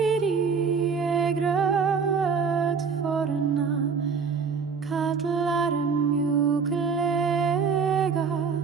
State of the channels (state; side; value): quieter; left; 5.7 dB